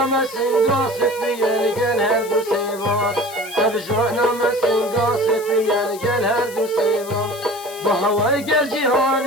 مسنگا سفیر گل هر دو سیما ابجانا مسنگا سفیر گل هر دو سیما با هوای گل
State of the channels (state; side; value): noise; left; hiss, 16 dB below the sound